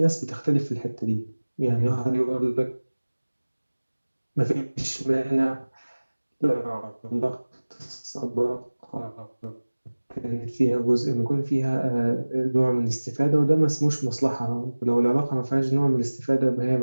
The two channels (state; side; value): inverted; both; correlation -1.00